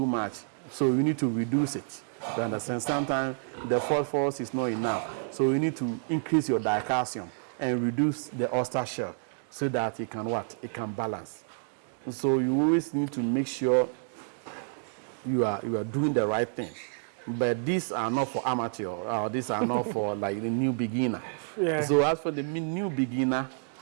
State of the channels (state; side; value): silent; left; digital silence